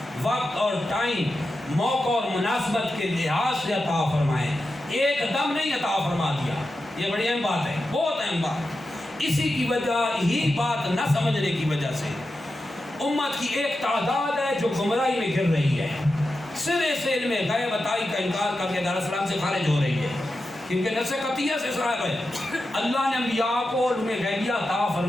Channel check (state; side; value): normal; both; correlation 0.90